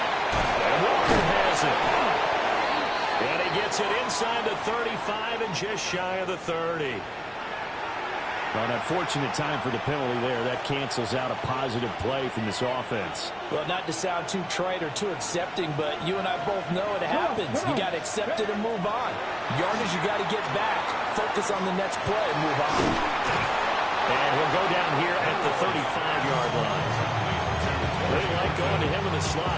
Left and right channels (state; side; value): identical; both; correlation 1.00